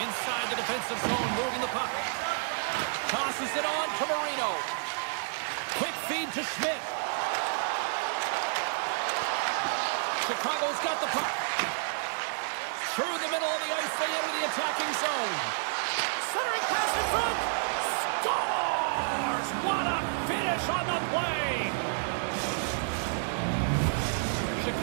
Inside the defensive zone, moving the puck. Tosses it on to Marino. Quick feed to Schmidt. Chicago's got the puck. Through the middle of the ice, they enter the attacking zone. Centering pass in front. Scores! What a finish on the play!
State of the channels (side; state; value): left; silent; digital silence